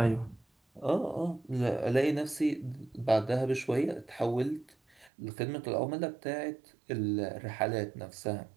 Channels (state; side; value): drops out; left; at 5.1 s